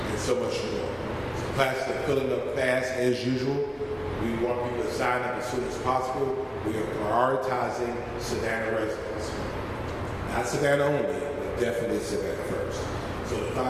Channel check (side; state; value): both; identical; correlation 1.00